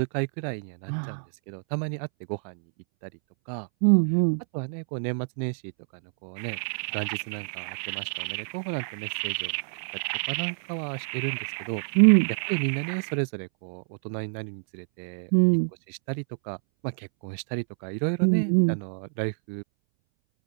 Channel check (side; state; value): left; silent; 60 dB below the other